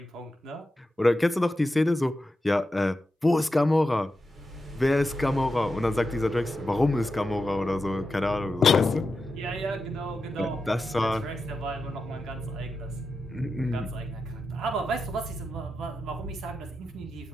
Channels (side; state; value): both; normal; correlation 0.89